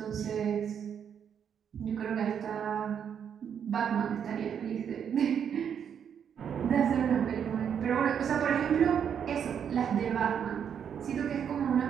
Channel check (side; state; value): left; quieter; 8.1 dB